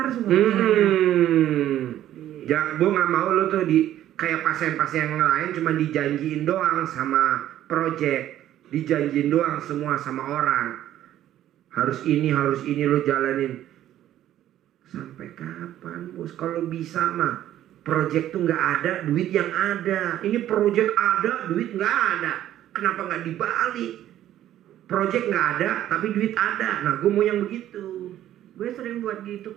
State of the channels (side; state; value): left; quieter; 12.3 dB